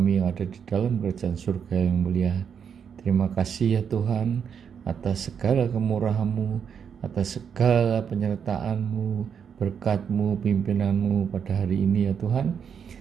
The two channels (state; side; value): quieter; left; 7.3 dB